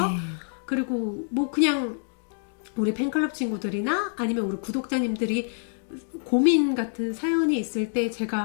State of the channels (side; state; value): right; silent; digital silence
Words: 네. 그리고 그냥 우리 팬클럽 친구들이나 아니면 우리 구독자님들이 고민 같은 사연이 있을 때